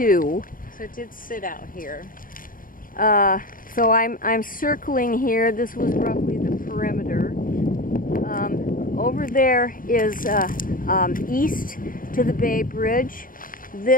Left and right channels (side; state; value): right; late; 0.40 ms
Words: So it did sit out here. So I'm circling here. This was roughly the perimeter. Over there is east to the Bay Bridge.